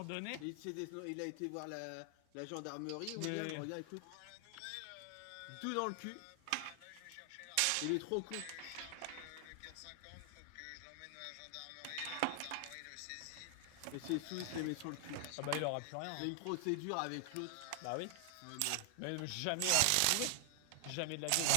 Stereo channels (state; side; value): different; both; correlation 0.00